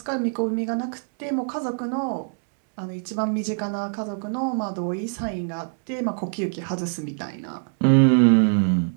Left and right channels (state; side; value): silent; left; 62 dB below the other